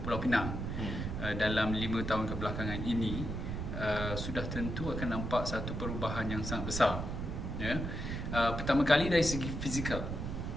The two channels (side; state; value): right; noise; rumble, 4 dB below the sound